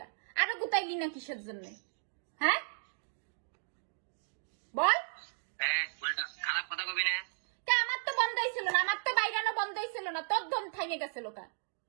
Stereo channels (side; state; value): left; silent; digital silence